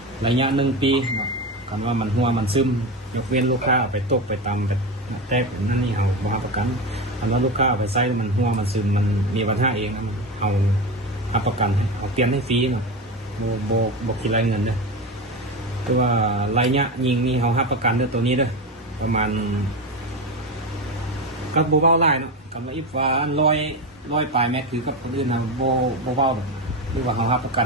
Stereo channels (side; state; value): both; normal; correlation 0.19